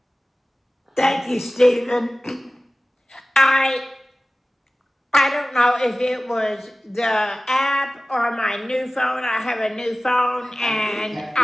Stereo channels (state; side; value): normal; both; correlation 0.97